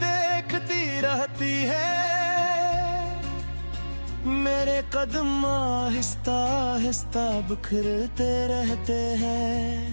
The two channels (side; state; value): both; inverted; correlation -1.00